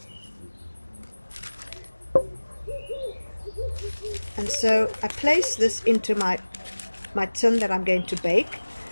And so I place this into my tin that I'm going to bake.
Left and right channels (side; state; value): both; inverted; correlation -1.00